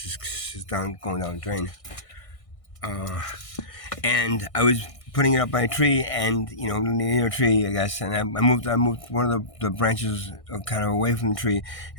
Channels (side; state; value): right; late; 1.6 ms